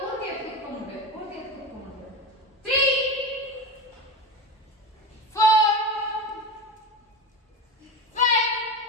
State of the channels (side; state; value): both; normal; correlation 0.23